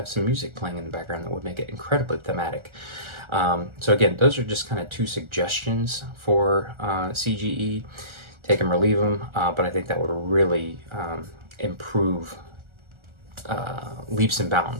some music playing in the background that would make it incredibly thematic. So again, those are just kind of 2 suggestions for CGE. Take them or leave them, but I think that would really improve leaps and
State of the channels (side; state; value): left; late; 1.4 ms